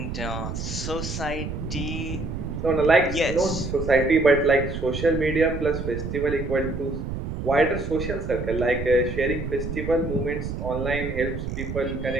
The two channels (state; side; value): noise; right; rumble, 5 dB below the sound